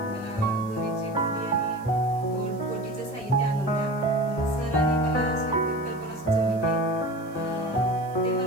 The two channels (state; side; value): noise; left; hiss, 26 dB below the sound